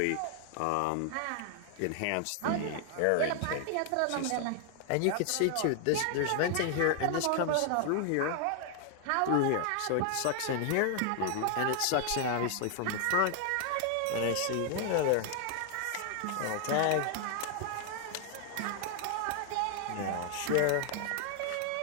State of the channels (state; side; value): different; both; correlation 0.00